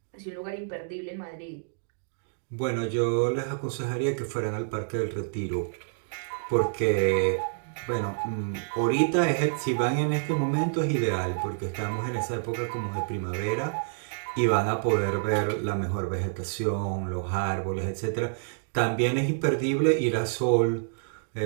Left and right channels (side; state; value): left; silent; digital silence